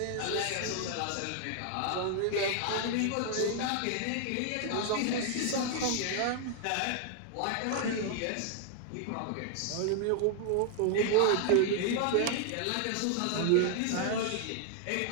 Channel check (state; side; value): different; both; correlation 0.00